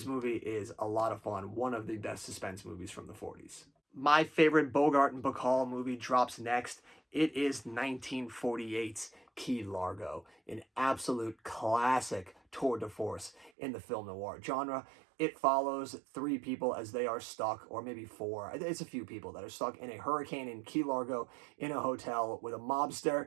movie is a lot of fun. One of the best suspense movies from the 40s. My favorite Bogart and Bacall movie drops next. It is 1948's Key Largo, an absolute classic tour de force in the film noir genre. It follows three people as they are stuck, or maybe four, it's a few people that are stuck in a hurricane in Key Largo in a hotel with a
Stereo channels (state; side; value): drops out; left; at 13.5 s